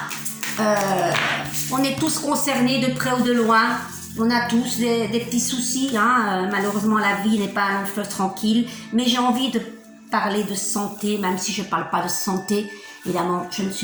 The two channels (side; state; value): both; identical; correlation 1.00